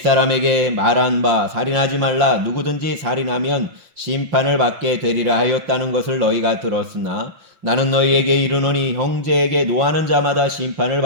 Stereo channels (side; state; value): left; late; 5.7 ms